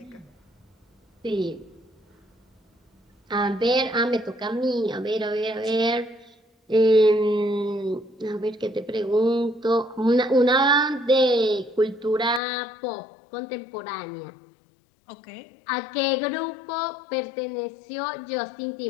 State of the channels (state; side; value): drops out; right; at 12.4 s